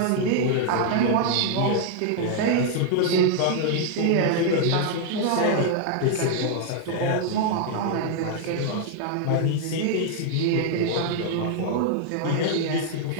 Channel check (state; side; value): different; both; correlation -0.01